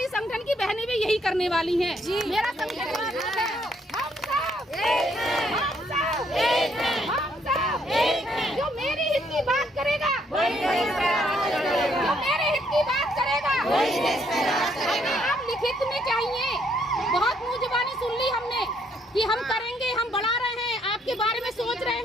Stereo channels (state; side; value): normal; both; correlation 0.70